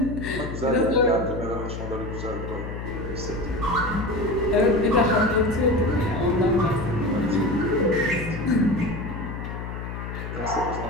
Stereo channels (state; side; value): noise; left; hum, 7 dB below the sound